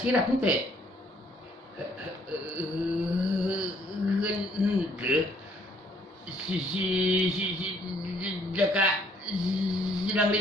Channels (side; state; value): both; normal; correlation 0.64